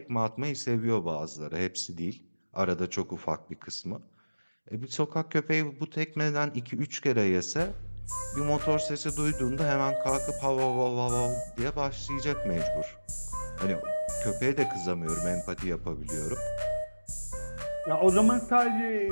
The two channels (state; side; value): inverted; both; correlation -1.00